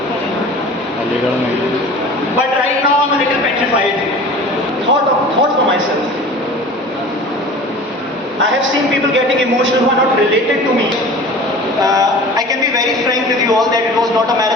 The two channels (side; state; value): both; normal; correlation 0.40